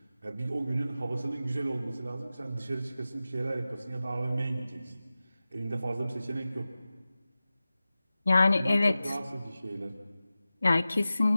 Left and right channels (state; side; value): inverted; both; correlation -0.95